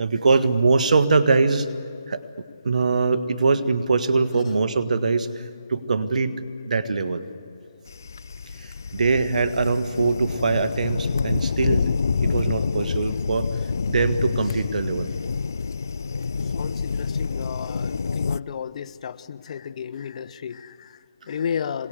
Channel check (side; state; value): both; inverted; correlation -0.82